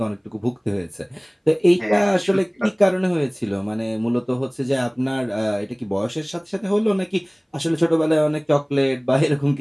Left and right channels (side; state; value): both; identical; correlation 1.00